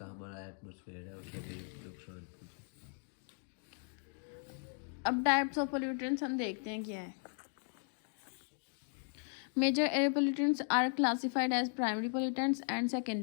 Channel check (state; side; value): silent; right; 53 dB below the other